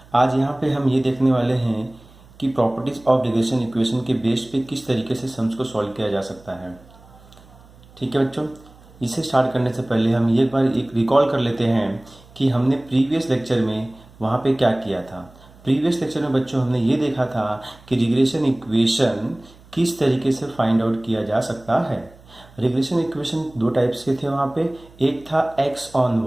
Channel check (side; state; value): right; noise; hum, 25 dB below the sound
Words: आज यहाँ पे हम ये देखने वाले हैं कि प्रॉपर्टीज ऑफ रिग्रेशन इक्वेशन के बेस पे किस तरीके से सम्स को सॉल्व किया जा सकता है। ठीक है बच्चों, इसे स्टार्ट करने से पहले हम एक बार रिकॉल कर लेते हैं कि हमने प्रीवियस लेक्चर में वहाँ पे क्या किया था। प्रीवियस लेक्चर में बच्चों हमने ये देखा था कि रिग्रेशन इक्वेशन किस तरीके से फाइंड आउट किया जा सकता है। रिग्रेशन इक्वेशन दो टाइप्स के थे वहाँ पे। एक था x ऑन